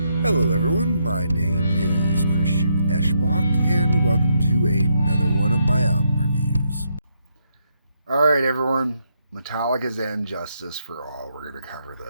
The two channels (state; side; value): inverted; both; correlation -0.78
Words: Hello everyone, my name is Christian Eschbach, and welcome to another one of my album reviews. Alright everyone, Metallica's And Justice for All, we're going to cover